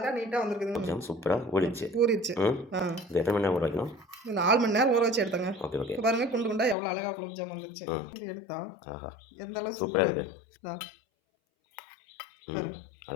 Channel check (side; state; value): right; drops out; at 6.8 s